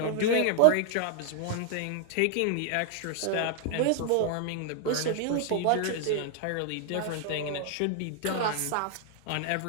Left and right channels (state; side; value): different; both; correlation 0.00